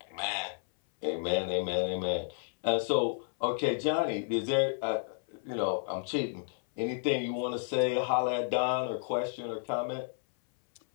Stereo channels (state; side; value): silent; right; 57 dB below the other